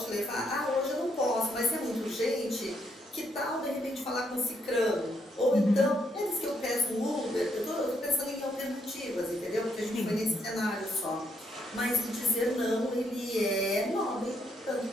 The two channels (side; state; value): both; normal; correlation 0.74